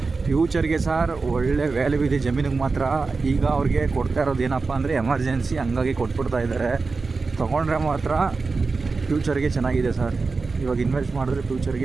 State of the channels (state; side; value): quieter; left; 4.2 dB